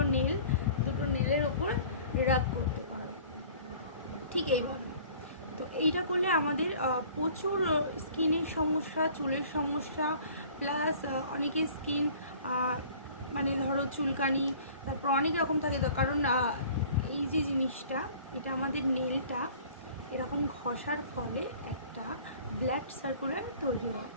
নেলের ওপর রাব করতে পারো, ঠিক এইভাবে। তো এইটা করলে আমাদের প্রচুর স্কিনের সমস্যা, চুলের সমস্যা, প্লাস অনেকের স্কিন মানে ধরো চুলকানি, তারপর অনেক রকম থাকে। তো কারণ এই যে জিনিসটা, এটা আমাদের নেলটা এরকম ঘষার ফলে একটা ব্লাড সার্কুলার তৈরি হয়।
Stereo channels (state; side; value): inverted; both; correlation -0.49